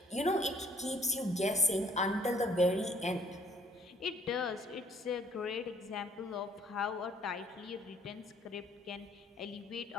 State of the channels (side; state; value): both; normal; correlation 0.60